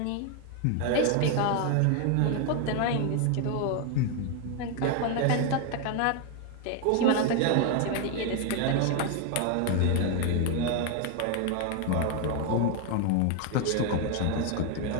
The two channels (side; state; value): both; different; correlation 0.01